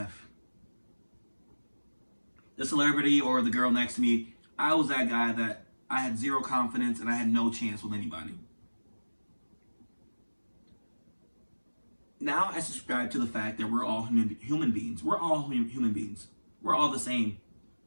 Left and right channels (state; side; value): inverted; both; correlation -1.00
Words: The celebrity or the girl next to me. I was that guy that I had zero confidence and I had no chance with anybody. Now I subscribe to the fact that we're all human beings. We're all human beings. We're all the same.